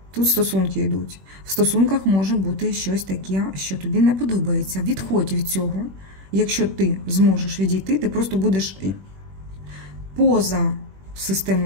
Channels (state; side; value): late; left; 21 ms